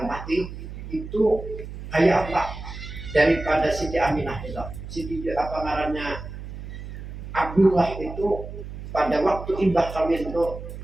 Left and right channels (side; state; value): right; noise; hum, 10 dB below the sound